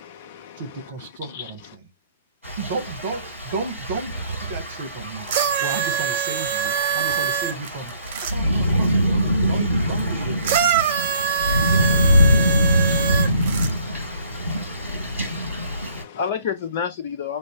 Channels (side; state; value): both; inverted; correlation -0.60